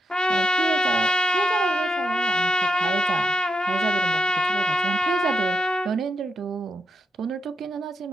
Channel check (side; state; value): both; normal; correlation 0.84